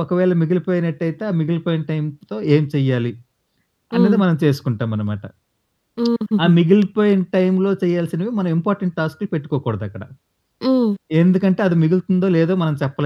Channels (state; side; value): identical; both; correlation 1.00